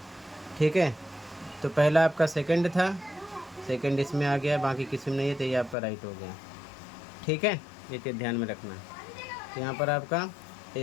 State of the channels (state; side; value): drops out; right; at 5.8 s